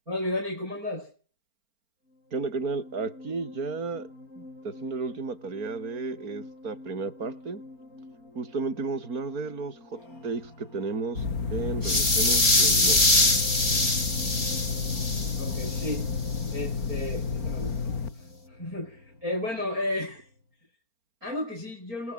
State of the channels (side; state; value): left; late; 4.4 ms